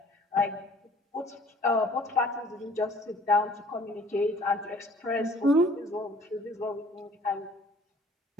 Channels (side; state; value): both; normal; correlation 0.53